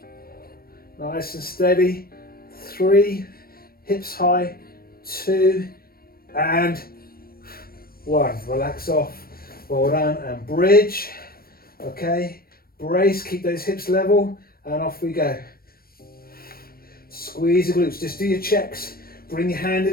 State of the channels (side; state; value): right; late; 0.44 ms